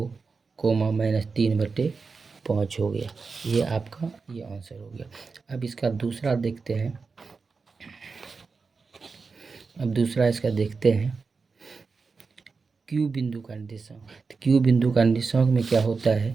-3/5 हो गया। ये आपका ये आंसर हो गया। अब इसका दूसरा देखते हैं। अब दूसरा इसका देखते हैं क्यू बिंदु का निर्देशांक। तो क्यू बिंदु का निर्देशांक में क्या होता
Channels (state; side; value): quieter; left; 4.6 dB